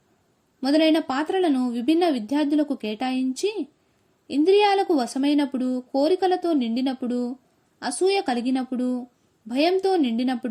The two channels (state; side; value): identical; both; correlation 1.00